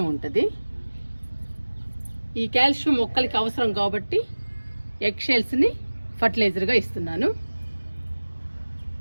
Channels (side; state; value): both; inverted; correlation -1.00